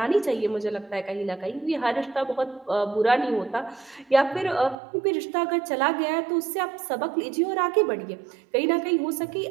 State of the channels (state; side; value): drops out; left; at 4.8 s